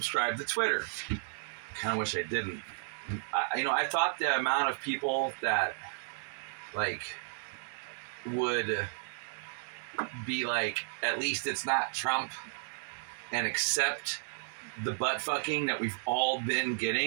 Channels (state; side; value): silent; left; digital silence